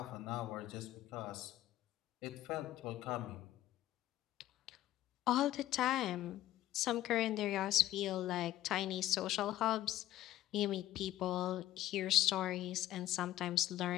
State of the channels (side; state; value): right; quieter; 14.2 dB